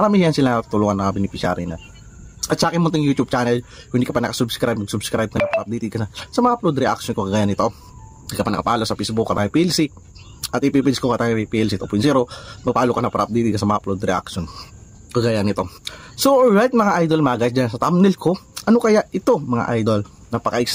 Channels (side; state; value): both; identical; correlation 1.00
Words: yan sila tulungan na beneficiary na. At sa akin mo itong YouTube channel, kung hindi ka pa nakasubscribe, mag-subscribe ka na, update ka na sa mga upload reaction ko kagaya nito. Hindi ka pa nakapalo sa Facebook, Katangay PLC, at ipipins ko Katangay PLC 2.0, magpalo ka na para update ka sa mga upload reaction kagaya nito. So alright mga idol, mga guys, dyan sa thumbnail ko, ano kaya ito mga idol?